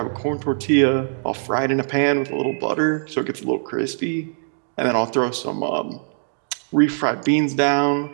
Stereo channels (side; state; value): left; silent; digital silence